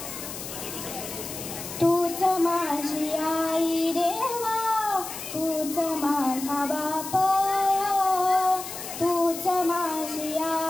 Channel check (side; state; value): left; noise; hiss, 9 dB below the sound